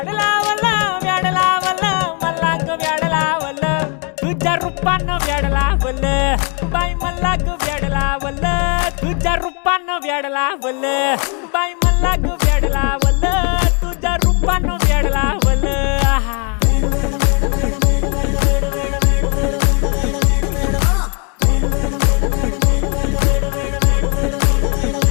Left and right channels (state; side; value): quieter; right; 36.3 dB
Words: लावलं व्याड लावलं मला ग व्याड लावलं तुझ्या रूपानं व्याड लावलं बाई मला ग व्याड लावलं तुझ्या रूपानं व्याड लावलं बाई मला ग व्याड लावलं तुझ्या रूपानं व्याड लावलं